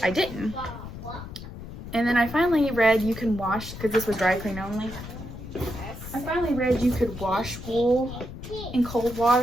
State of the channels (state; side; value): noise; left; rumble, 11 dB below the sound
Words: I didn't. And then I finally read you can wash, because this was dry clean only. I finally read you could wash wool in cold